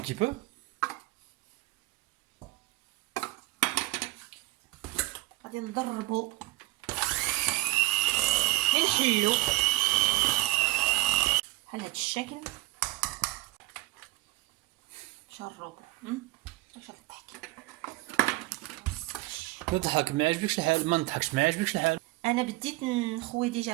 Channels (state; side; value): quieter; left; 19.9 dB